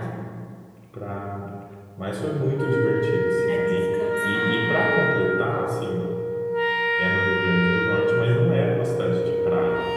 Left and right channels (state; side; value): identical; both; correlation 1.00